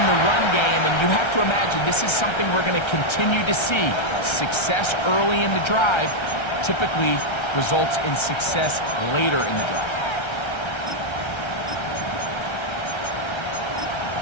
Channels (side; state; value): right; late; 1.3 ms